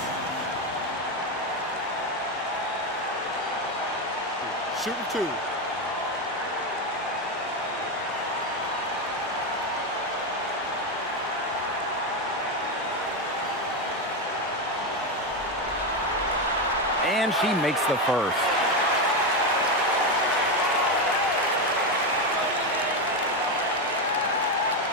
Shooting 2. And she makes the first.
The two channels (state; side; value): normal; both; correlation 0.10